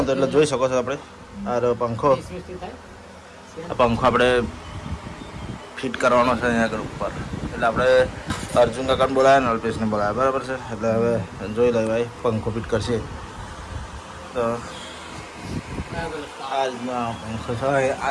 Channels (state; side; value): identical; both; correlation 1.00